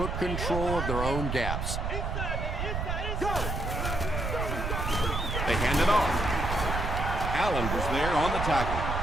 control of their own gaps. They hand it off. Allen was there on the tackle.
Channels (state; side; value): noise; right; rumble, 2 dB below the sound